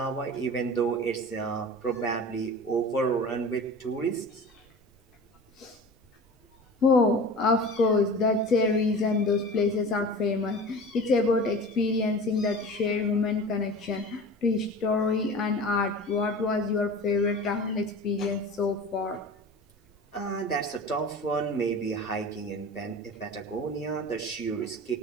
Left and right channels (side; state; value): right; noise; rumble, 30 dB below the sound